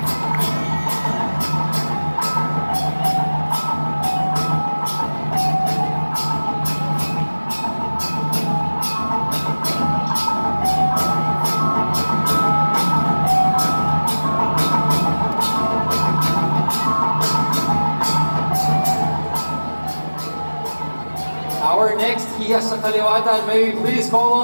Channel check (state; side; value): inverted; both; correlation -1.00